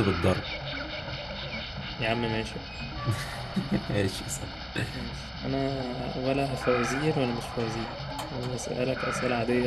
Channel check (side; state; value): both; identical; correlation 1.00